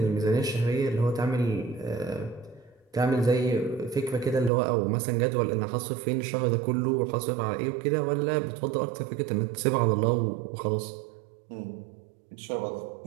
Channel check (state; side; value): drops out; left; at 4.5 s